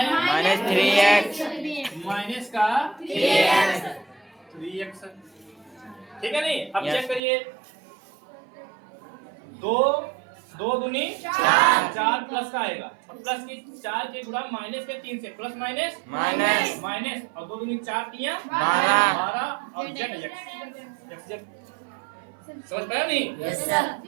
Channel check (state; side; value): drops out; left; at 7.2 s